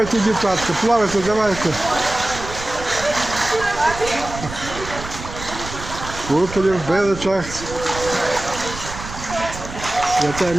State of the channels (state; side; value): noise; right; rumble, 11 dB below the sound